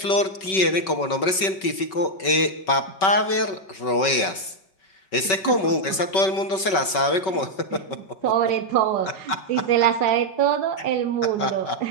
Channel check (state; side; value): late; right; 5.3 ms